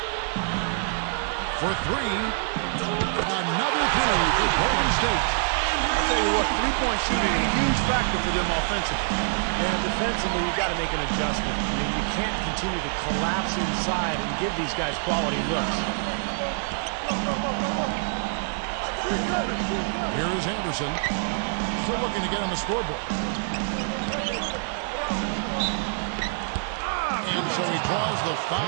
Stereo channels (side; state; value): left; silent; digital silence